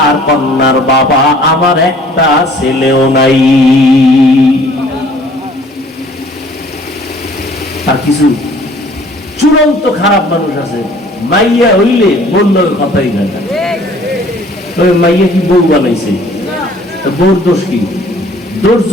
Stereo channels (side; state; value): both; normal; correlation 0.54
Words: কন্যার বাবা, আমার একটা ছেলেও নাই। আর কিছু চূড়ান্ত খারাপ মানুষ আছে, মাইয়া হইলে বললো কথাই না, তবে মাইয়া কি বউ বানাইছে, বউর দোষ কি? দোষ